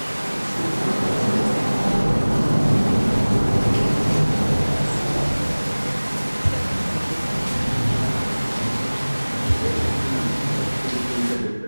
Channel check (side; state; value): both; inverted; correlation -1.00